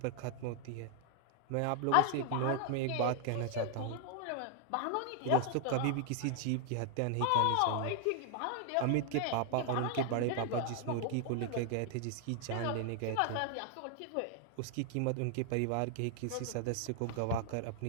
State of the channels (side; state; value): both; different; correlation 0.00